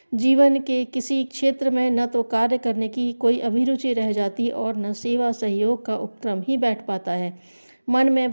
जीवन के किसी क्षेत्र में न तो कार्य करने की कोई अभिरुचि रह जाती और न सेवा सहयोग का उपक्रम ही बैठ पाता है। मन में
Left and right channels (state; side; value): inverted; both; correlation -1.00